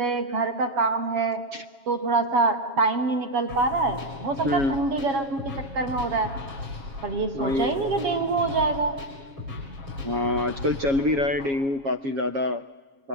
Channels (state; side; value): late; left; 7.3 ms